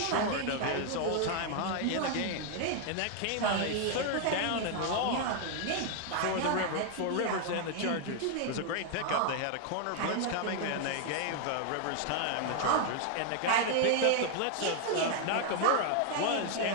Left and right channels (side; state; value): both; different; correlation 0.00